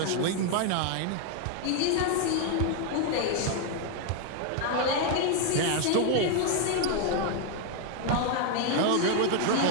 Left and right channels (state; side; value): different; both; correlation 0.00